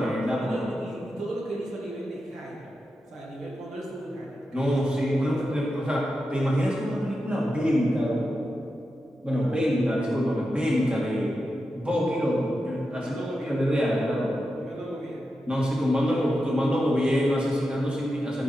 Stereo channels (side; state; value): both; normal; correlation 0.89